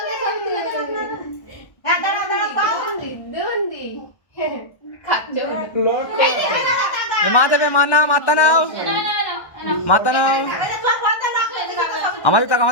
মা দেবে, মা নাও, মাতা নাও, মাতা নাও। আমার দিক তাকাও,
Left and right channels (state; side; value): late; right; 1.1 ms